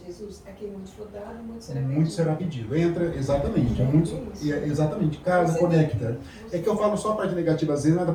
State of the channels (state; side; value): identical; both; correlation 1.00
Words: a quem muito for dado, muito será pedido. Entra, exatamente. Exatamente. Casa, conecta. É que eu falo só a parte negativa, às vezes, não é da